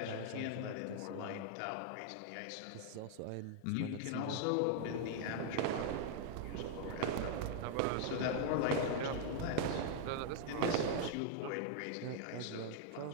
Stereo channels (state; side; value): different; both; correlation 0.00